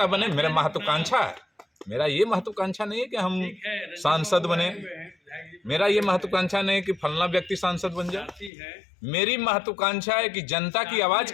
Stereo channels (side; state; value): right; drops out; at 8.5 s